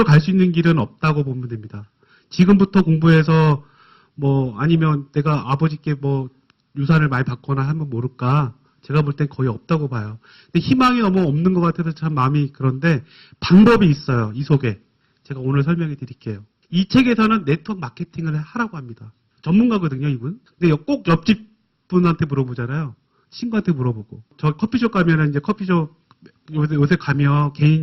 갈 수 있는 길은 없다고 보면 됩니다. 지금부터 공부해서 뭐 아니면 내가 아버지께 뭐 유산을 많이 받거나 하면 모를까. 제가 볼 땐 거의 없다고 봐요. 근데 희망이 너무 없는 것 같아서 참 마음이 그런데 방법이 있어요. 이 속에. 제가 오늘 설명해 드릴게요. 이 책에서는 네트워크 마케팅을 하라고 합니다. 전문가거든요, 이분. 근데 꼭 옆집 분한테 물어보잖아요. 친구한테 물어보고. 저 커피숍 가면은 이제 커피숍 요새 가면,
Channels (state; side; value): identical; both; correlation 1.00